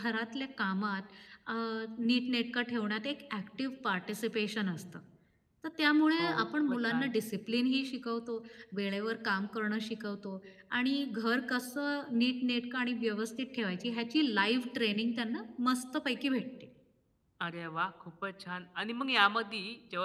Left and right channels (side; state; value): both; identical; correlation 1.00